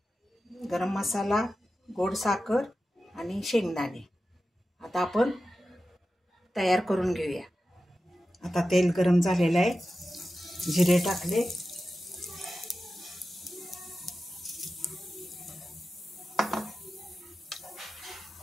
गरम मसाला, गोड साखर आणि शेंगदाणे। आता आपण तयार करून घेऊया। आता तेल गरम झालेलं आहे, जिरे टाकले,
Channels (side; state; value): both; normal; correlation 0.93